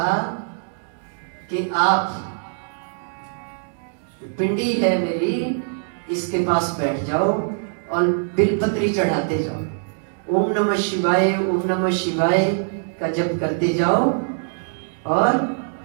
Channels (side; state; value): left; silent; digital silence